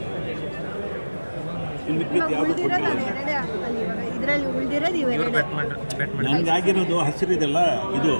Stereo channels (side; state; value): both; inverted; correlation -1.00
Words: ಇನ್ನು ಯಾವುದು ಇದರಲ್ಲಿ ಉಳಿದಿರೋದು ಇವೆರಡೇ. ನನಗೆ ಆಗಿರೋದು ಹಸಿರಿದೆಲ್ಲ, ಇದು